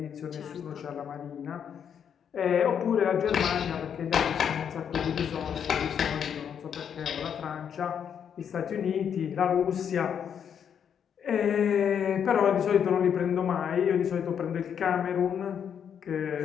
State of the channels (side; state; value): right; quieter; 8.1 dB